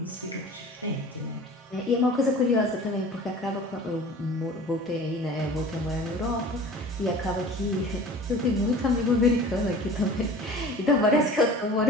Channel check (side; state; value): both; normal; correlation 0.41